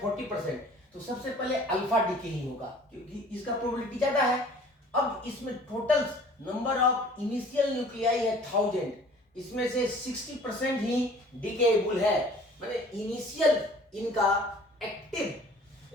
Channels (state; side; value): normal; both; correlation 0.50